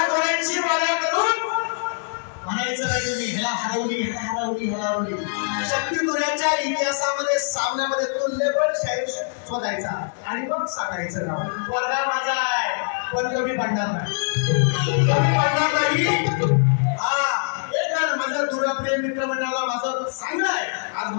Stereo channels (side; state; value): right; silent; 63 dB below the other